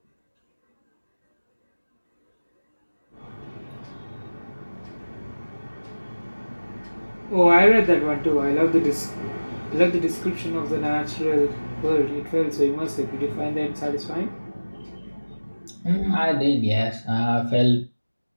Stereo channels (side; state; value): both; inverted; correlation -1.00